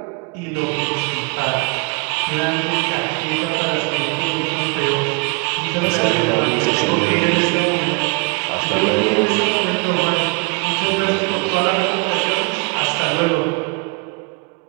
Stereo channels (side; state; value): left; quieter; 31.1 dB